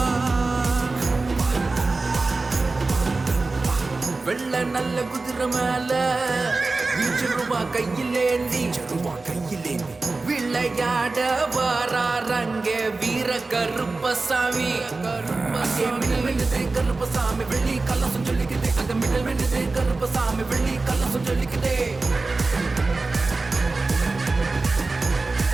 வெள்ள நல்ல குதிரை மேல ரூபா கையிலேந்தி விளையாட வாராரங்க வீர கருப்பசாமி கருப்பசாமி வெள்ளி கலசம் சொல்லிக்குது அங்க மின்னல் மின்னுது கருப்பசாமி வெள்ளி கலசம் சொல்லிக்குது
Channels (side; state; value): left; quieter; 3.6 dB